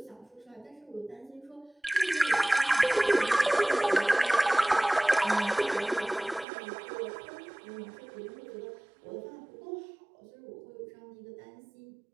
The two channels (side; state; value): left; drops out; at 6.5 s